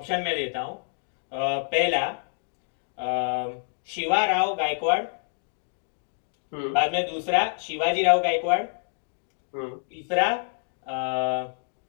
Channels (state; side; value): silent; right; digital silence